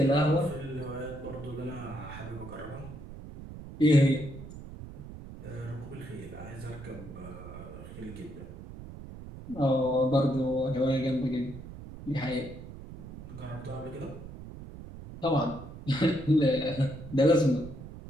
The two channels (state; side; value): noise; right; rumble, 13 dB below the sound